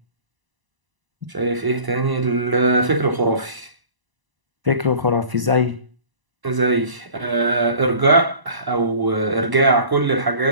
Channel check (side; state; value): left; late; 1.0 ms